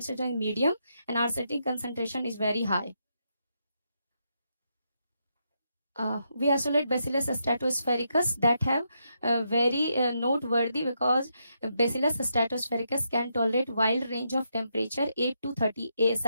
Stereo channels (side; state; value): both; inverted; correlation -0.81